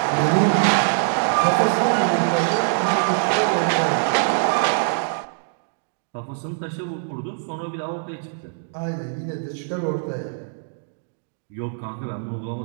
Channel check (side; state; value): left; silent; digital silence